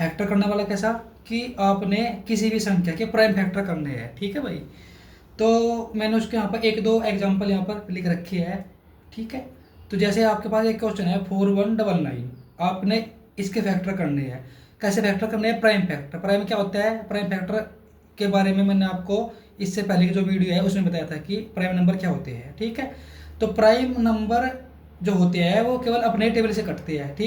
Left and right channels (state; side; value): identical; both; correlation 1.00